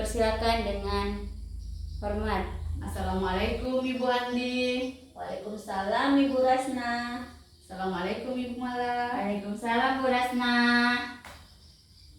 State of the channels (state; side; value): identical; both; correlation 1.00